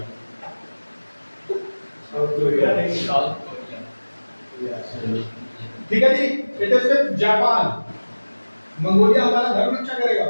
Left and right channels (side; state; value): both; inverted; correlation -1.00